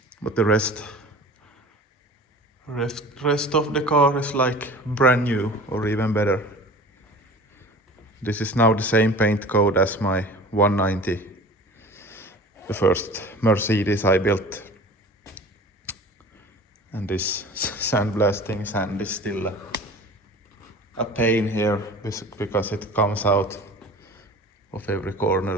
But the rest of the car is like brand new, or even better. This is now the same paint code as my 190, the first Mercedes I built. And this sandblasting sand is still a pain here, because it comes out of every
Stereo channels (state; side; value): normal; both; correlation 0.41